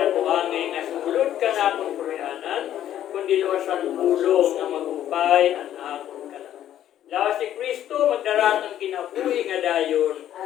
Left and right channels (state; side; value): quieter; right; 11.4 dB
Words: ko angay nga sumulod ka na akong kurianan, kundi luwasan pulong nga magupay ang akong kalan. Lawas ni Kristo, magdaratang kinabuhi nga dayon.